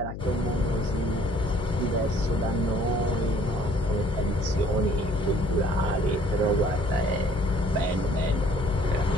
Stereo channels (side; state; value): left; noise; hum, 8 dB below the sound